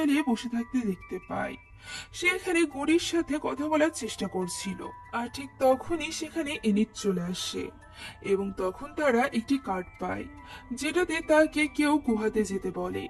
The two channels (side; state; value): both; identical; correlation 1.00